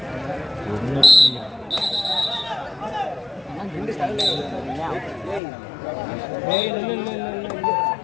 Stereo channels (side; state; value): right; drops out; at 5.4 s